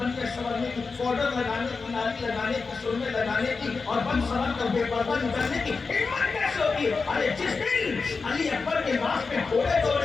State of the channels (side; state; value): right; quieter; 4.5 dB